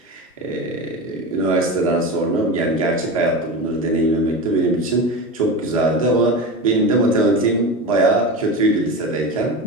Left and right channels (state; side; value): normal; both; correlation 0.25